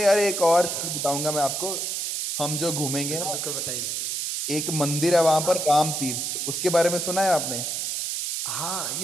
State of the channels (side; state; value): right; noise; hiss, 2 dB below the sound